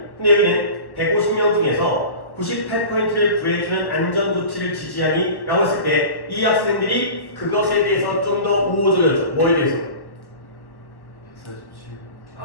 근데 여기는 150명 중에서 98%를 구해주는 안전조치를 지지하니? 라고 했을 때 이 학생들이 그것에 대해서 좀 더 우호적이었죠. 뭐에 대해서?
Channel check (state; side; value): late; right; 1.2 ms